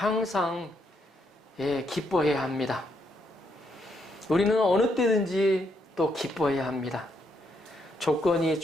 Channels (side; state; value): both; normal; correlation 0.76